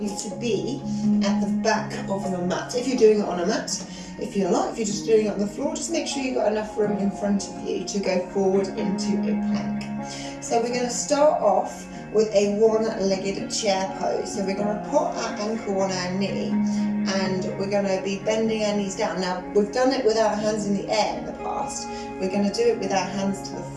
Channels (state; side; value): identical; both; correlation 1.00